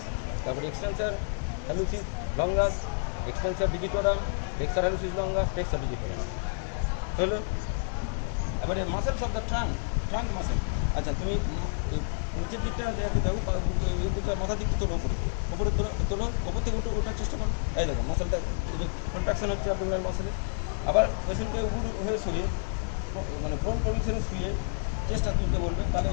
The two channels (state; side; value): silent; right; digital silence